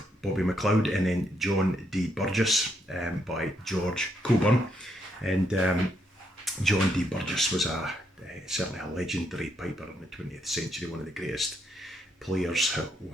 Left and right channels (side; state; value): both; normal; correlation 0.76